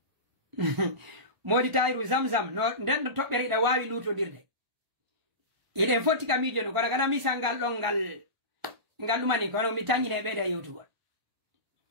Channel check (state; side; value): late; left; 1.5 ms